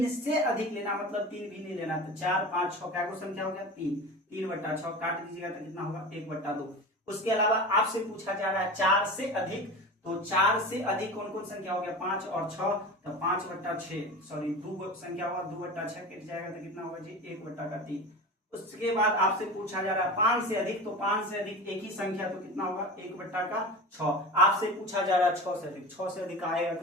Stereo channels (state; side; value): normal; both; correlation 0.30